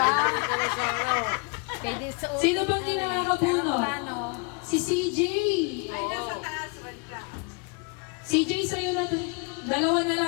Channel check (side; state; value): right; quieter; 32.3 dB